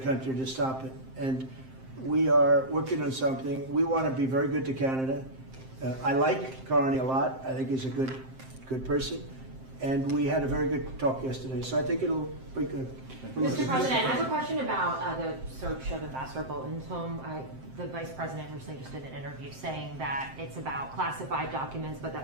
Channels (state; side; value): late; left; 7.6 ms